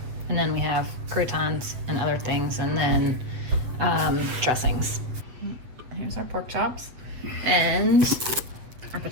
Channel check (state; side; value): late; left; 8.2 ms